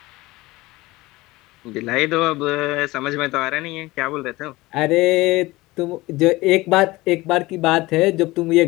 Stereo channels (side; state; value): right; quieter; 20.2 dB